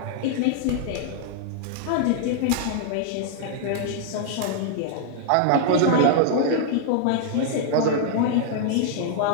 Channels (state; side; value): different; both; correlation -0.01